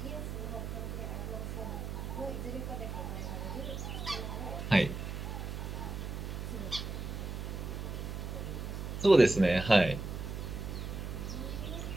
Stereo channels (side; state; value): right; noise; hum, 5 dB below the sound